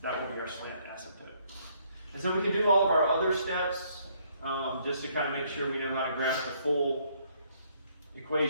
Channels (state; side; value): inverted; both; correlation -0.67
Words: That will be our slant asymptote. And so we can do all of our other steps just to kind of make sure we know how to graph the full